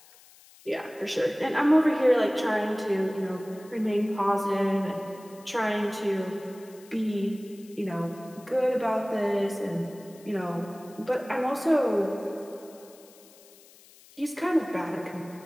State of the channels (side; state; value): left; noise; hiss, 24 dB below the sound